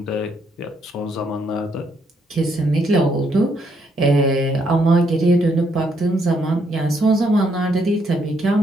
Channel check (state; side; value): normal; both; correlation 0.73